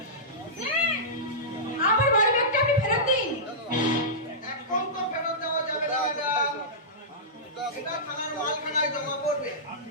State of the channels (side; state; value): both; normal; correlation -0.16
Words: আমার বাড়ি ব্যাগটা আপনি ফেরত দিন। এখন তো ফেরত দেওয়া যাবে না ম্যাডাম, এটা থানার মালখানায় জমা পড়বে।